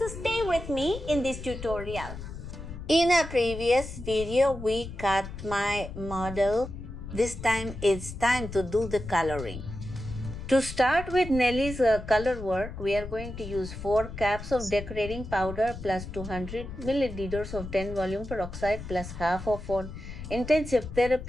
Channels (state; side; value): noise; left; rumble, 10 dB below the sound